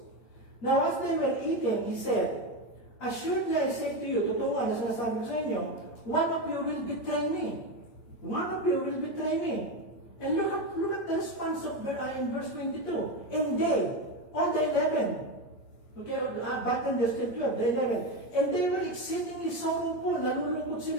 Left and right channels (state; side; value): late; right; 8.6 ms